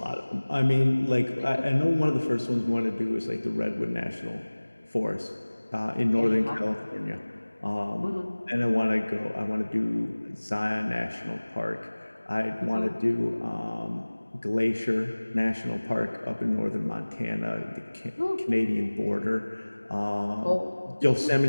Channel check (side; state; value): both; inverted; correlation -1.00